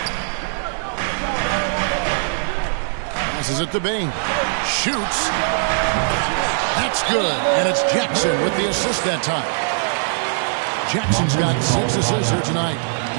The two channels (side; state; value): left; silent; 57 dB below the other